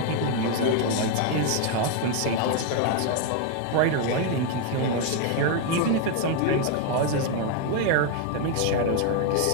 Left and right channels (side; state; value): both; different; correlation 0.01